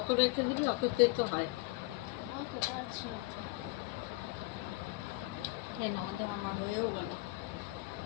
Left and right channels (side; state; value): right; quieter; 21.7 dB